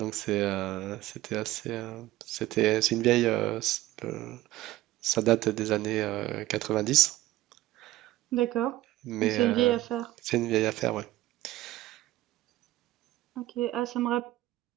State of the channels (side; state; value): left; quieter; 16.3 dB